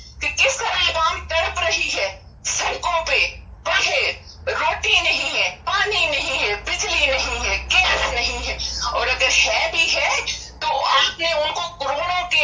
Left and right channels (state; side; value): identical; both; correlation 1.00